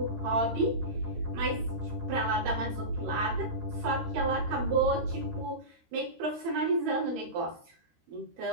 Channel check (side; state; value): left; late; 13 ms